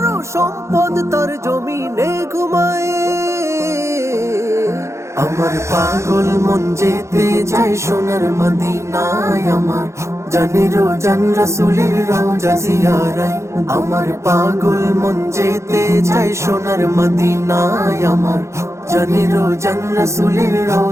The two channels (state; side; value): late; left; 0.14 ms